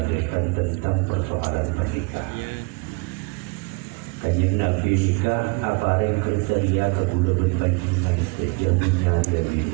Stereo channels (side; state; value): left; quieter; 29.1 dB